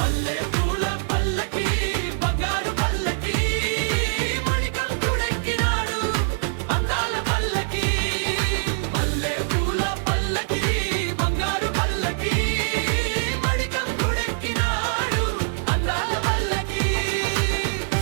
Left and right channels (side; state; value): left; silent; digital silence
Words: పూల పల్లకి బంగారు పల్లకి మణికంఠుడెక్కినాడు అందాల పల్లకి మల్లె పూల పల్లకి బంగారు పల్లకి మణికంఠుడెక్కినాడు అందాల పల్లకి